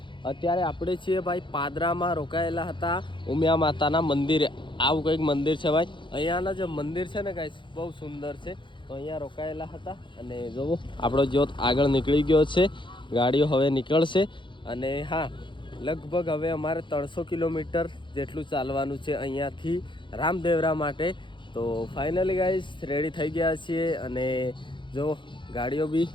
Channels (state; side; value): late; right; 0.23 ms